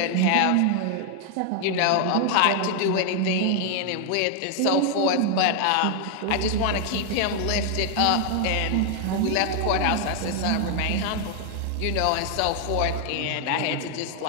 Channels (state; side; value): different; both; correlation 0.00